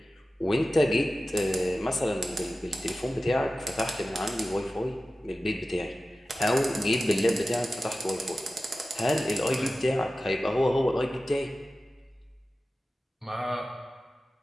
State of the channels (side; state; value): both; normal; correlation 0.95